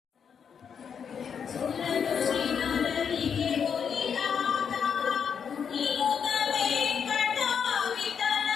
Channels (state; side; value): quieter; right; 7.1 dB